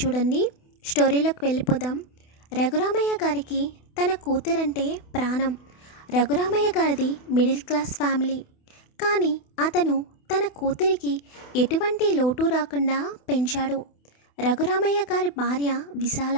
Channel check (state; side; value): late; right; 28 ms